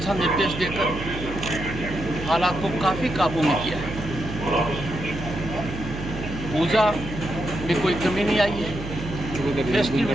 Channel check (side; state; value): right; noise; hum, 8 dB below the sound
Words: निर्देश देकर हालात को काफ़ी काबू में किया है। पूजा में कोई कमी नहीं आई है,